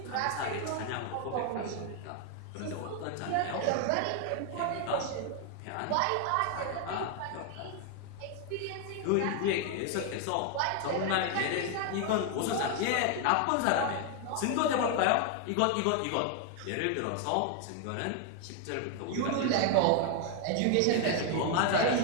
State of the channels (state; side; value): different; both; correlation 0.00